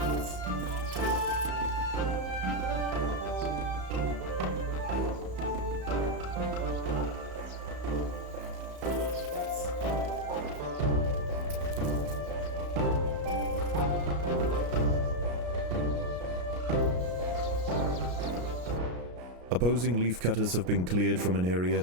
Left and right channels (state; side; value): late; left; 33 ms